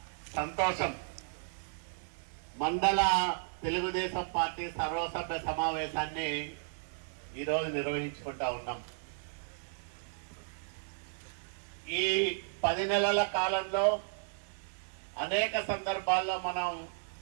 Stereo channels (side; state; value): left; silent; digital silence